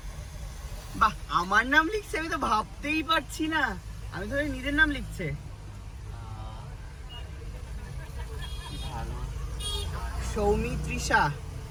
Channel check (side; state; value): both; identical; correlation 1.00